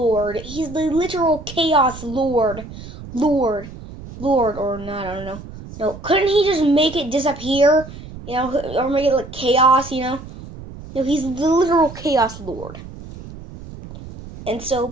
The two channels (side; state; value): right; noise; rumble, 14 dB below the sound